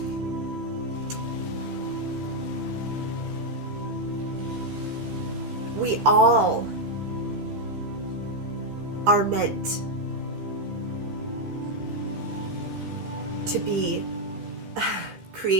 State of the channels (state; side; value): late; left; 15 ms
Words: We all are meant to be